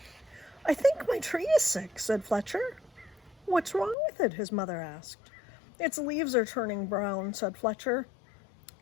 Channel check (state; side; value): drops out; right; at 4.0 s